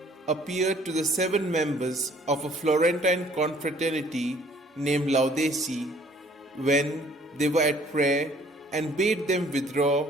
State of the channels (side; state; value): both; normal; correlation 0.58